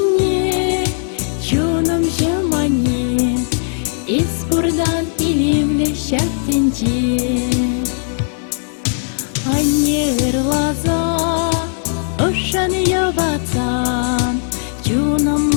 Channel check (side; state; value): right; silent; digital silence